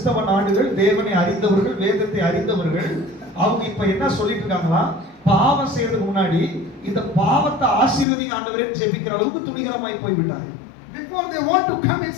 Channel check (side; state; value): right; drops out; at 8.1 s